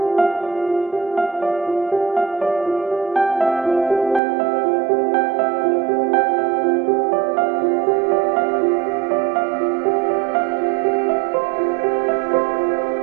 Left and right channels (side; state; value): left; drops out; at 4.2 s